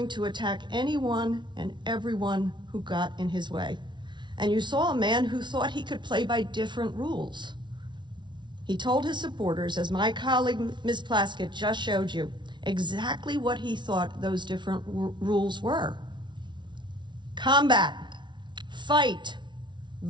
to attack anyone and everyone who got in his way. And you saw a man who thought he could play by different rules. He told his supporters, as my colleague Ms. Plaskett just showed you, exactly what he thought those different rules were. Combat, fight,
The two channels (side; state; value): left; late; 0.23 ms